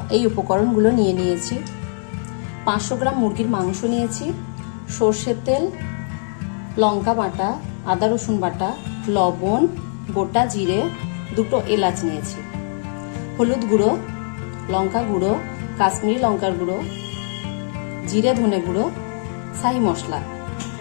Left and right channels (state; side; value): silent; right; digital silence